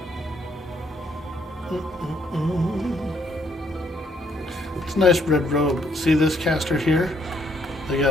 It's a nice red robe. See this caster here? They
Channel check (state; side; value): normal; both; correlation 0.69